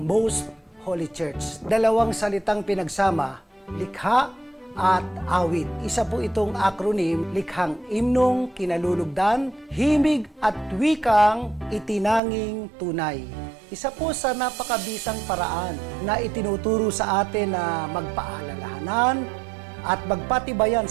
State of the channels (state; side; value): drops out; left; at 12.2 s